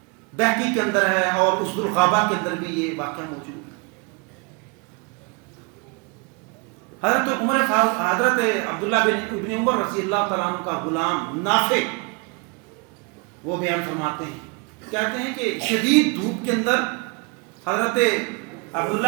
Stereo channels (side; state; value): left; quieter; 32.2 dB